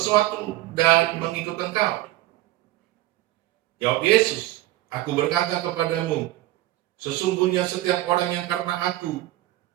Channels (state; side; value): quieter; left; 16.5 dB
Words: dan mengikut Engkau. Jawab Yesus, aku berkata kepadamu, sesungguhnya setiap orang yang karena aku